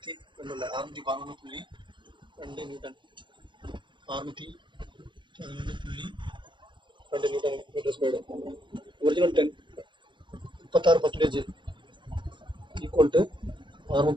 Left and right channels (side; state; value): left; late; 0.23 ms